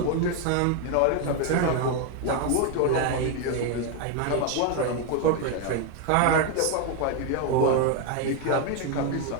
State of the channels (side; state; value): both; different; correlation 0.01